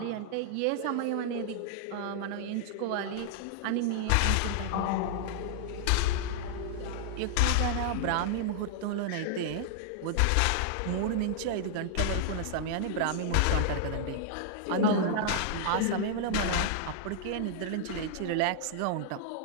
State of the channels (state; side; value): different; both; correlation -0.01